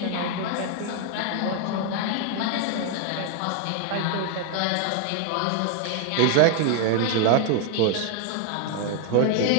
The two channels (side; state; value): both; different; correlation 0.00